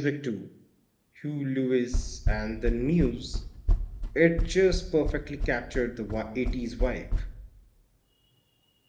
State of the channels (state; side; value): identical; both; correlation 1.00